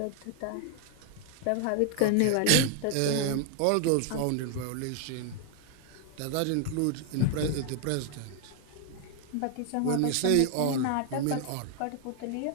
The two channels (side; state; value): both; different; correlation 0.00